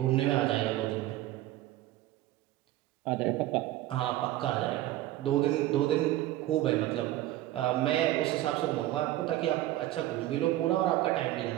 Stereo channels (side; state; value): left; quieter; 15.2 dB